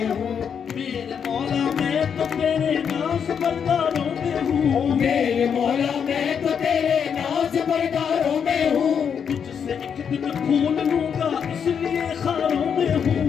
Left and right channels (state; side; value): quieter; right; 7.3 dB